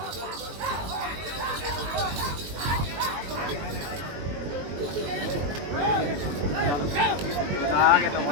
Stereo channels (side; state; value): left; late; 21 ms